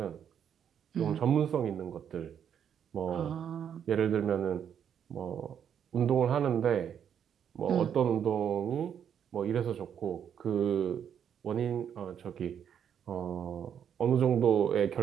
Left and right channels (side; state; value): left; quieter; 8.5 dB